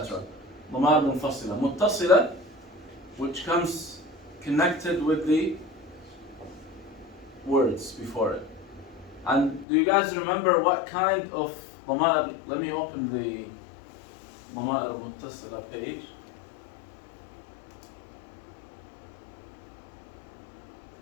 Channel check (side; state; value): right; drops out; at 9.7 s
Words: ضمائر منفصلة. متصلة, which comes connected with the words before it. And do you guys remember what kind of ضمائر? Let me open the ضمائر المتصلة page.